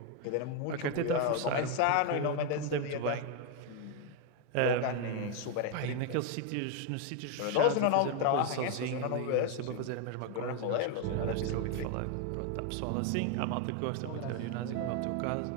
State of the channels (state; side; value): different; both; correlation 0.01